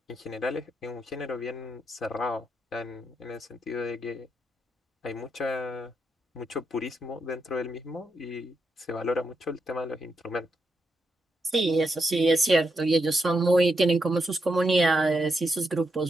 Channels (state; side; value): normal; both; correlation 0.83